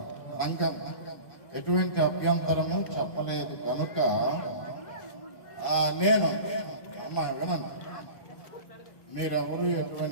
సంఘం ఎటువంటి అభ్యంతరము చెప్పలేదు కనుక నేను అమ్మా వినండి, మీరెవరు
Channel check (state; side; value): late; right; 1.2 ms